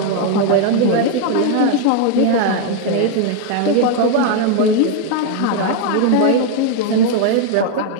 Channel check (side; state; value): both; different; correlation 0.01